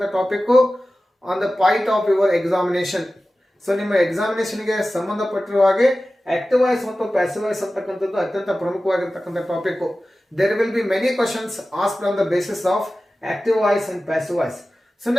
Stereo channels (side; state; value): both; normal; correlation 0.95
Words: topic on the point of your examination. So ನಿಮ್ಮ ಎಕ್ಸಾಮಿನೇಷನ್ಗೆ ಸಂಬಂಧಪಟ್ಟಿರುವ ಹಾಗೆ active voice ಮತ್ತು ಪ್ಯಾಸಿವ್ ವಾಯ್ಸ್ ಅಂತಕ್ಕಂಥದ್ದು ಅತ್ಯಂತ ಪ್ರಮುಖವಾಗಿರ್ತಕ್ಕಂಥ topic. There will be many questions asked on the basis of active voice and passive voice. So